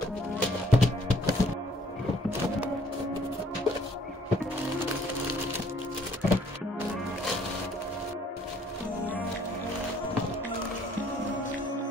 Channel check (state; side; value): normal; both; correlation 0.61